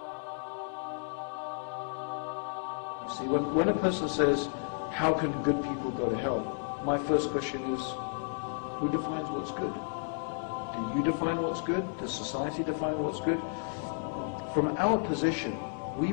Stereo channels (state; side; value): silent; right; 56 dB below the other